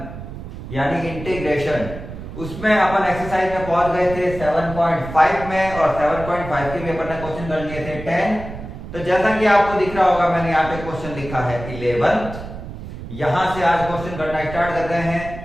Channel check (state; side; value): noise; right; rumble, 11 dB below the sound